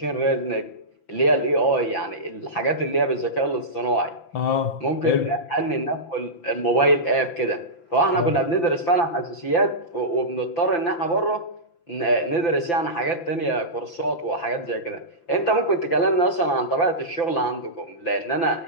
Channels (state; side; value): late; right; 5.9 ms